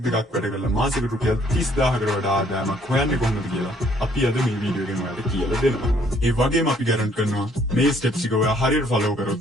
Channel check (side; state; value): both; normal; correlation 0.63